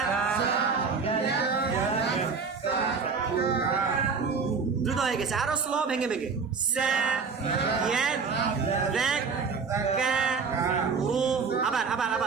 দ্রুত হয়ে গেছে, আরো স্লো, ভেঙে ভেঙে, সা, ইয়ান, দেখ, কা, রো। আবার আবার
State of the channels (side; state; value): left; quieter; 5.2 dB